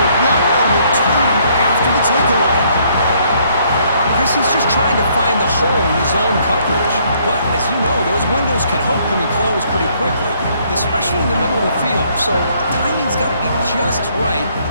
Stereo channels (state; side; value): inverted; both; correlation -0.66